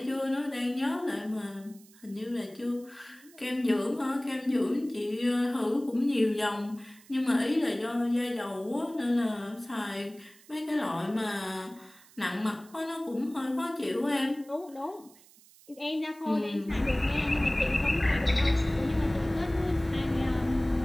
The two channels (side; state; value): right; noise; hiss, 25 dB below the sound